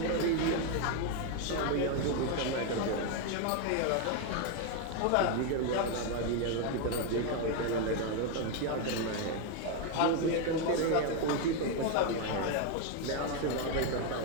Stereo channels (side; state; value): both; different; correlation 0.01